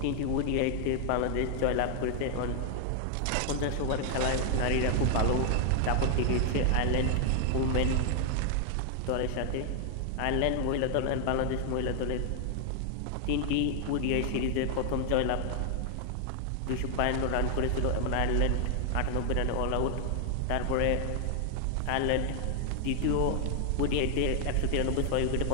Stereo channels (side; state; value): both; different; correlation 0.00